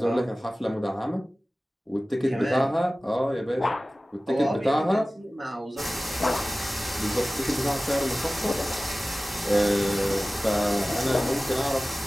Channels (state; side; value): normal; both; correlation 0.97